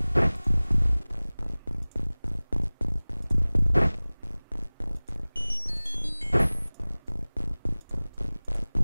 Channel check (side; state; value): both; inverted; correlation -1.00